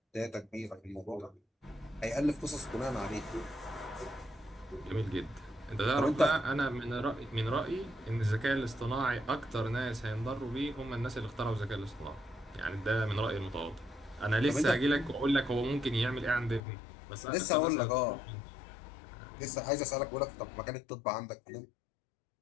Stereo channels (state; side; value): drops out; right; at 16.6 s